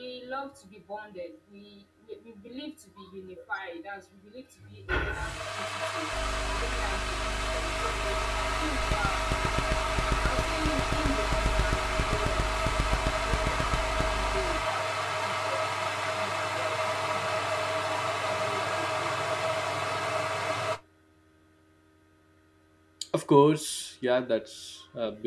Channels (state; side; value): identical; both; correlation 1.00